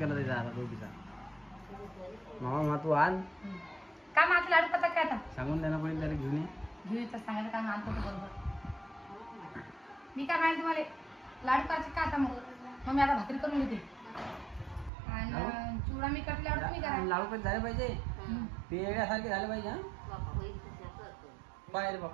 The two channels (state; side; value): drops out; left; at 14.9 s